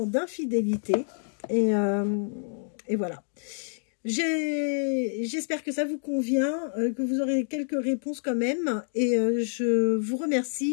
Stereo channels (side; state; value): right; silent; digital silence